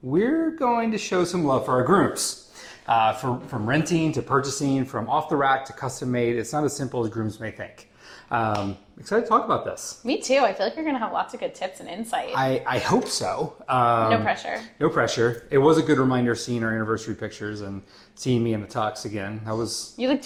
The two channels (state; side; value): identical; both; correlation 1.00